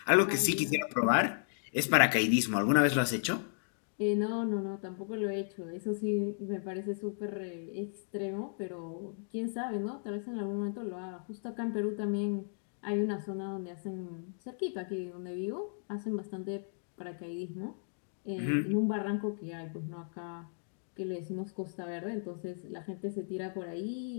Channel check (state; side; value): silent; right; digital silence